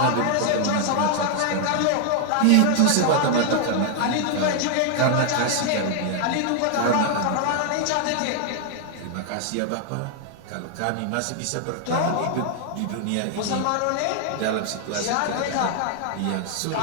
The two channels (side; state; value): both; different; correlation 0.00